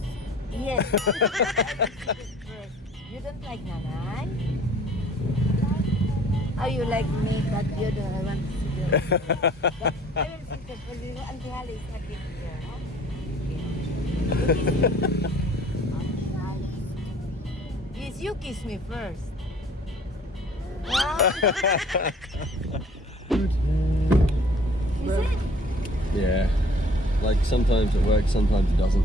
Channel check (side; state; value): both; normal; correlation 0.53